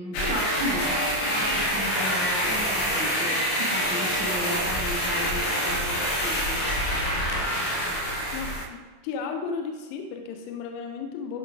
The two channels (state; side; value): late; right; 28 ms